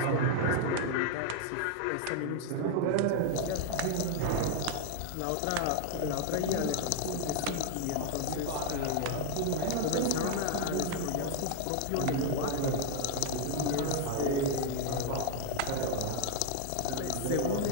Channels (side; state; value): both; different; correlation 0.01